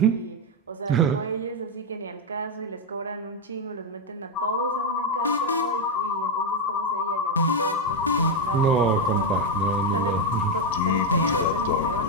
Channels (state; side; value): normal; both; correlation 0.04